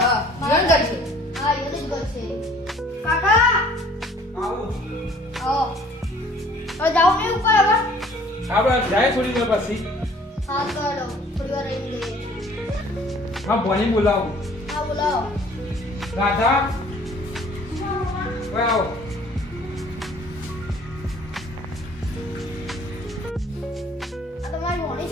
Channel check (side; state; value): both; normal; correlation 0.54